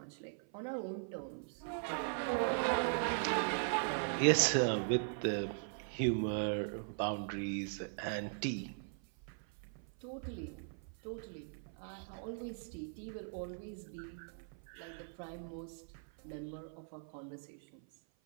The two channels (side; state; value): left; silent; 51 dB below the other